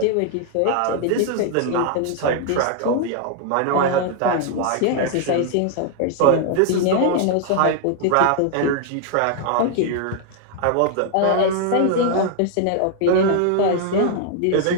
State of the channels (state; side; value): different; both; correlation 0.00